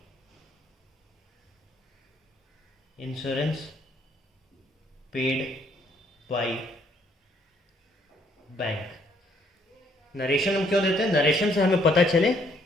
insurance paid by bank. Narration हम क्यों देते हैं? नरेशन से हमें पता चले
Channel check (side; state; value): both; normal; correlation 0.67